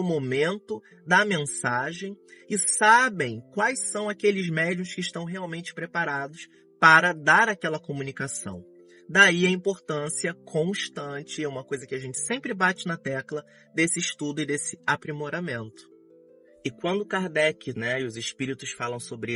momento, da mensagem, e sabem quais são aqueles médiuns que estão realmente preparados para dar aquela comunicação. Daí a importância constante, é uma coisa que a gente sempre bate na tecla, desse estudo e desse aprimoramento. E quando Kardec, né, e os espíritos falam sobre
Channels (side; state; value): both; identical; correlation 1.00